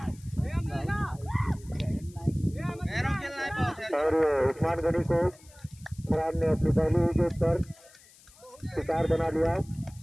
और उस्मान गनी को फरहान ने अपनी पहली विकेट पर शिकार बना लिया।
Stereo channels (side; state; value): left; noise; hiss, 25 dB below the sound